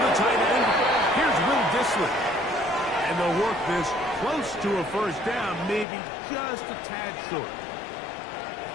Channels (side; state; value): right; drops out; at 5.9 s